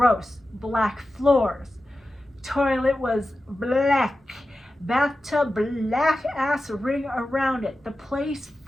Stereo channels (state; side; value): normal; both; correlation 0.93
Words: Black floors. Toilet was black. Bathtub, black ass ring around it. The place